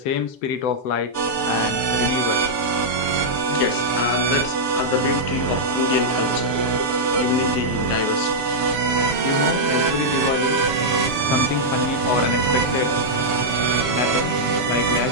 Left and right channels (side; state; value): right; late; 6.9 ms